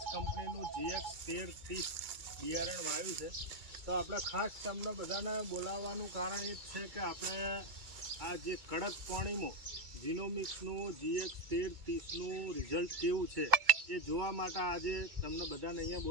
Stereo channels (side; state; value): left; late; 2.2 ms